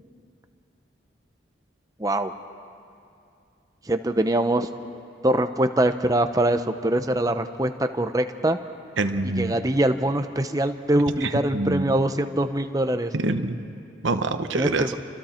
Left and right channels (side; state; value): both; normal; correlation 0.66